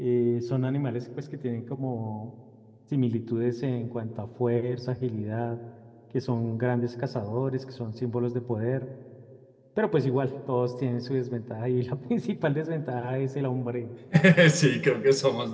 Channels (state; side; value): identical; both; correlation 1.00